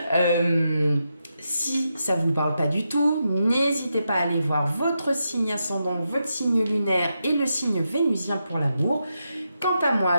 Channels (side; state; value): both; inverted; correlation -0.85